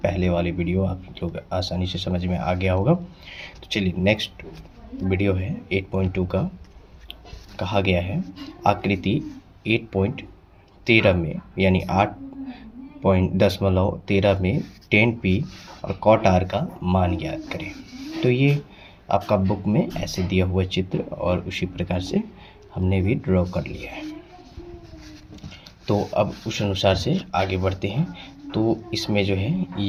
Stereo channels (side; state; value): both; identical; correlation 1.00